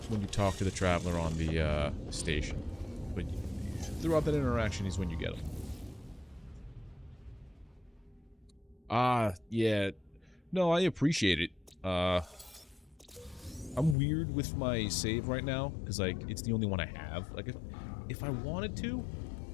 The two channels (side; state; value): right; drops out; at 14.0 s